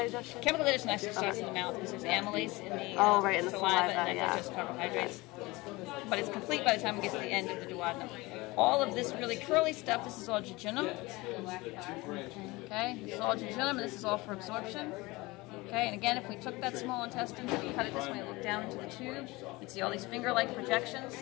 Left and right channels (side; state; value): right; quieter; 22.2 dB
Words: Chemical digestion actually starts in the mouth because there's amylase in the, in the saliva, and that digests carbohydrates. But it's complete by the time we get to the end of the duodenum. All of this really curly stuff, this is all jejunum. Okay, this is all jejunum, and this is all for absorption. Okay, and again, if we took that small intestine and cut it this way and look down into the tube, you'd see all these finger-like projections